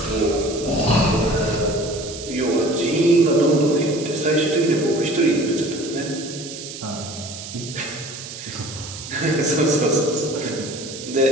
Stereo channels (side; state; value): right; noise; hiss, 11 dB below the sound